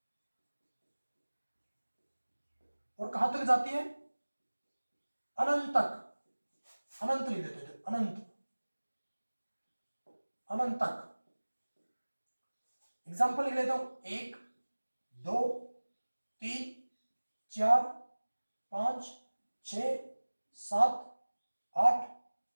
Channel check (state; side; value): inverted; both; correlation -1.00